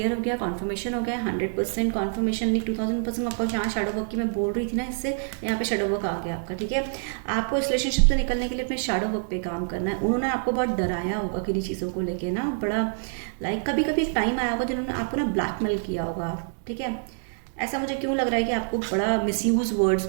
हो गया, कॉन्फर्मेशन हो गया। 100% कॉन्फर्मेशन नहीं, 2000% आपको यहाँ शैडो वर्क की मैं बोल रही थी ना, इससे यहाँ पे शैडो वर्क आ गया आपका, ठीक है। आपको इस रिलेशनशिप से निकलने के लिए अपने शैडो वर्क पे काम करना है। उन्होंने आपको बहुत डराया होगा किन्हीं चीज़ों को लेके ना, बड़ा लाइक कभी कभी एक टाइम आया होगा जिन्होंने आपको ना ब्लैकमेल किया होगा, ठीक है। ऐसा मुझे क्यों लग रहा है कि आपको बड़ा मिसयूज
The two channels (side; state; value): left; silent; digital silence